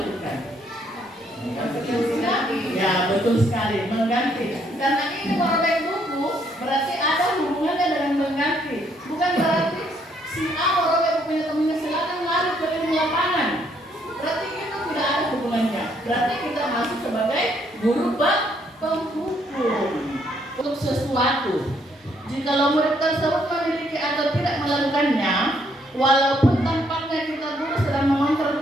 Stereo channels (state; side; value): normal; both; correlation 0.70